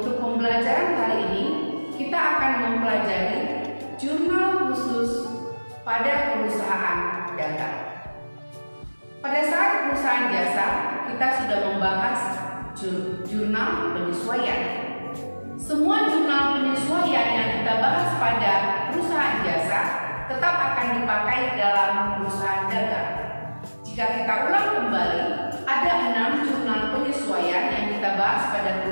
pembelajaran kali ini kita akan mempelajari jurnal khusus pada perusahaan dagang. Pada saat perusahaan jasa, kita sudah membahas jurnal penyesuaian. Semua jurnal penyesuaian yang kita bahas pada perusahaan jasa tetap akan dipakai dalam perusahaan dagang. Jika kita ulang kembali, ada 6 jurnal penyesuaian yang kita bahas pada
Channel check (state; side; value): inverted; both; correlation -1.00